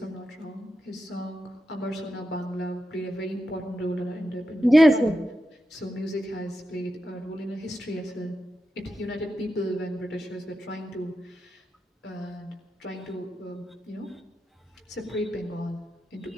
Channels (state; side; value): normal; both; correlation 0.89